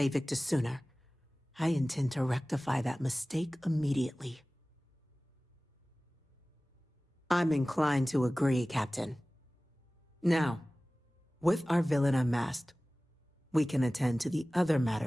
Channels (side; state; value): both; normal; correlation 0.98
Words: sooner. I intend to rectify that mistake immediately. I'm inclined to agree, Captain. Now, with our villain unmasked, we can attend to the other